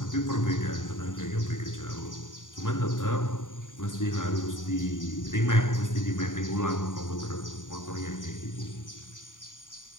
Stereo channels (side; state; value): right; late; 0.88 ms